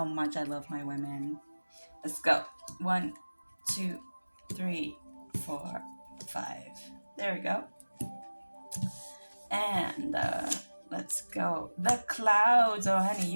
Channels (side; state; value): both; inverted; correlation -1.00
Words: much I love my women. Let's go. One, two, three, four, five. There we go. And let's go. The clouds. Oh, honey,